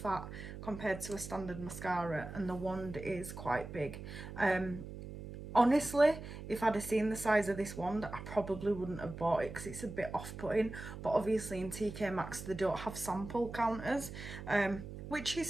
compared to a standard mascara, and the wand is quite big. Honestly, if I'd have seen the size of this wand, I probably wouldn't have bought it, because it's a bit off-putting. But obviously in TK Maxx they don't have sample counters, which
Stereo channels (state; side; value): noise; right; hum, 10 dB below the sound